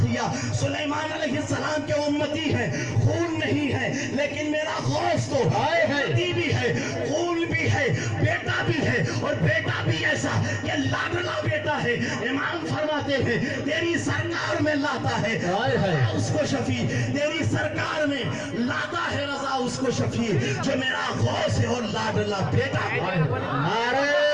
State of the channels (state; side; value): identical; both; correlation 1.00